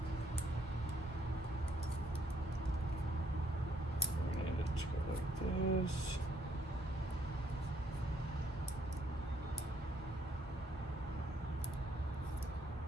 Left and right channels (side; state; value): both; normal; correlation 0.69